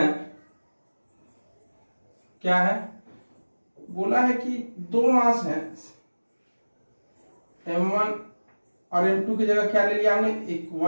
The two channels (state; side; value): inverted; both; correlation -1.00